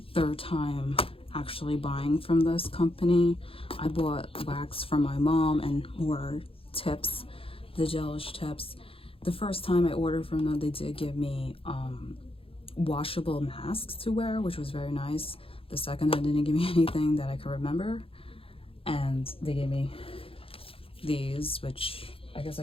third time actually buying from this company. I bought wax from my mom and more tips, the gelish tips. The first time I ordered from them, they did give me washable masks to wear, which was very nice. The second time, they didn't give me anything that I can remember, and they gave me these, which I guess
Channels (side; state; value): right; late; 0.27 ms